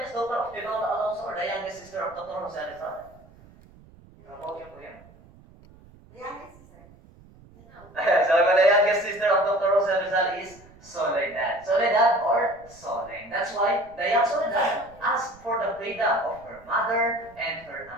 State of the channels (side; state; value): right; noise; rumble, 24 dB below the sound